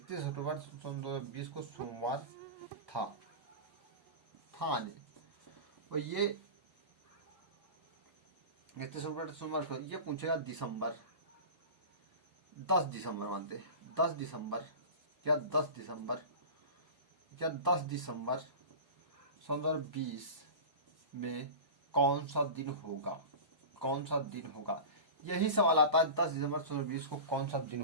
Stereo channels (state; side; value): late; left; 1.0 ms